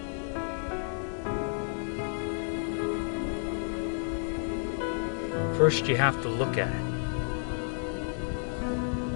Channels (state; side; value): silent; right; 56 dB below the other